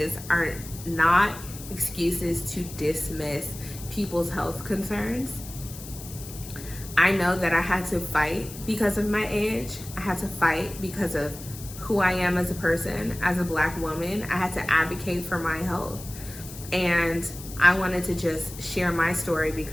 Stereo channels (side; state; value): left; noise; hiss, 14 dB below the sound